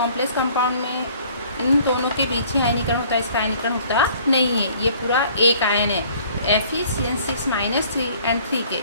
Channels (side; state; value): both; inverted; correlation -0.55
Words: कंपाउंड में इन दोनों के बीच ही आयनीकरण होता है, इसका आयनीकरण होता नहीं है, ये पूरा एक आयन है। Fe3CN6 -3 एंड 3 के